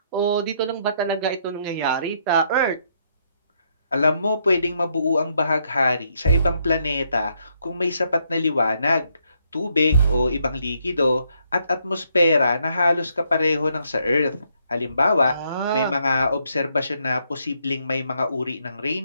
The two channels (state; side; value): inverted; both; correlation -0.74